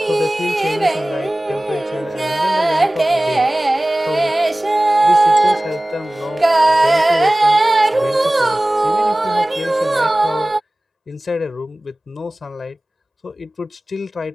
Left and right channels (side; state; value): both; normal; correlation 0.98